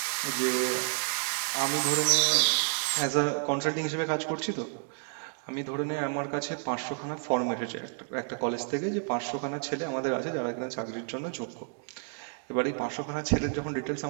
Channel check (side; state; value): left; silent; 56 dB below the other